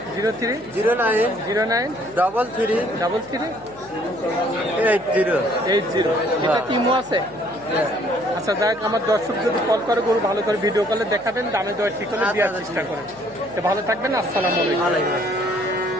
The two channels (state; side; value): noise; left; hum, 26 dB below the sound